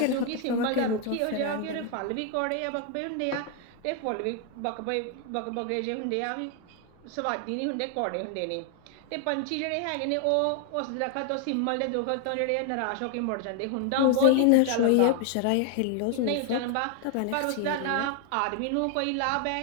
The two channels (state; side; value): different; both; correlation 0.00